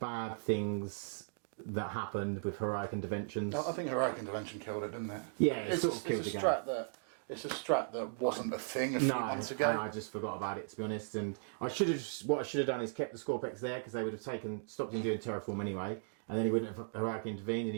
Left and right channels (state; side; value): silent; left; digital silence